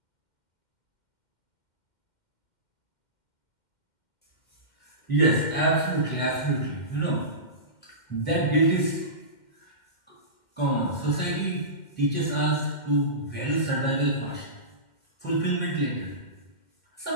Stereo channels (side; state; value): right; late; 2.1 ms